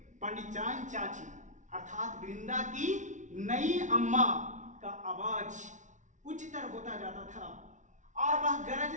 पंडिचान चाची अर्थात वृंदा की नई अम्मा का आवाज उच्चतर होता जाता था और वह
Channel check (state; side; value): late; left; 0.36 ms